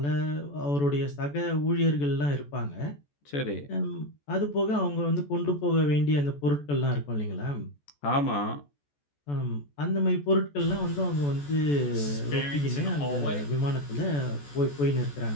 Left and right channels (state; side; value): late; right; 14 ms